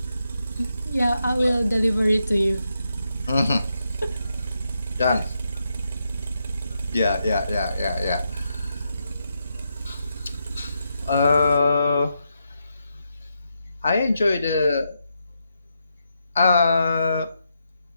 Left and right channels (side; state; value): both; inverted; correlation -0.83